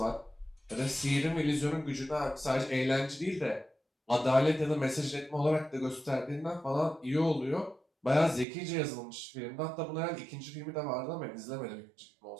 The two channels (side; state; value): left; drops out; at 8.5 s